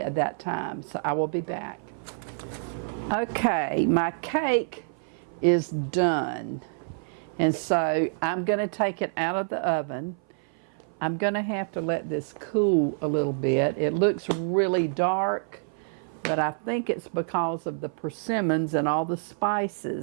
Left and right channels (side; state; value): left; silent; 56 dB below the other